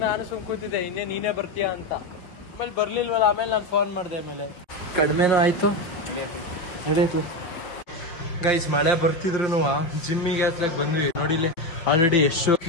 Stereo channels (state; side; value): late; right; 5.7 ms